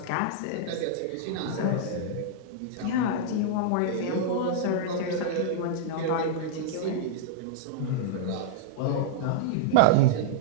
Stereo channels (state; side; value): different; both; correlation -0.01